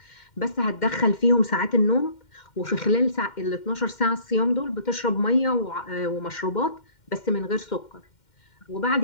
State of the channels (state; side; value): late; right; 2.1 ms